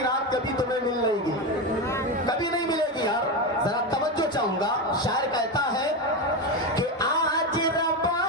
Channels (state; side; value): normal; both; correlation 0.15